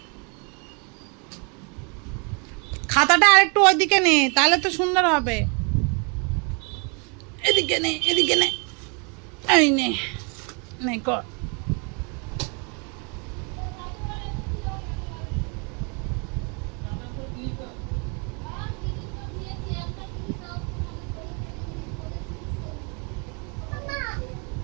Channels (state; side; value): quieter; left; 34.5 dB